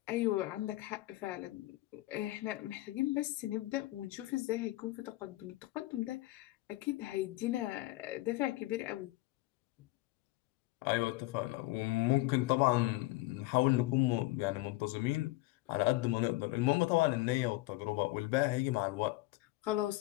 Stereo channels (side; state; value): right; quieter; 19.2 dB